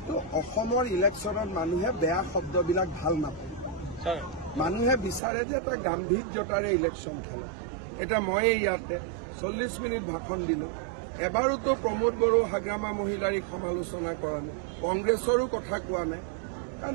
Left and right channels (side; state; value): left; drops out; at 5.2 s